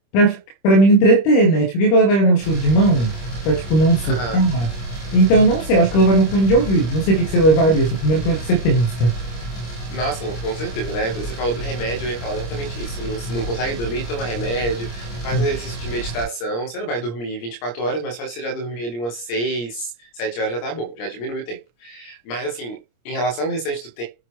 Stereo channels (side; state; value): right; late; 26 ms